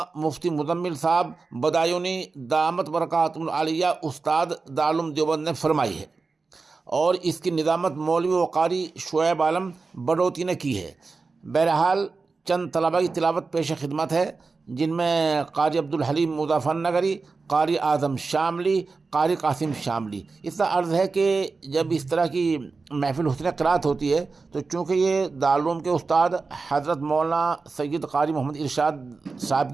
मुफ्ती मुज़म्मिल साहब बदायूनी दामत बरकातुहुल आलिया उस्ताद दारुल उलूम देवबंद ने फरमाई है और इसकी निज़ामत मौलवी व कारी शुएब आलम बडोती ने की है। बहरहाल चंद तलबा की तिलावत पेश खिदमत है, जिनमें कारी अब्दुल हलीम मुज़फ़्फ़रनगरी, कारी आज़म शामली, कारी कासिम शामली। इसका अर्ज़ है कि जब इस तरह की महफिल हुस्न क़िराअत होती है तो चूँकि ये दारुल उलूम के उस्ताद हज़रत मौलाना सैयद कारी मोहम्मद इरशाद साहब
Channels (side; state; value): left; quieter; 4.2 dB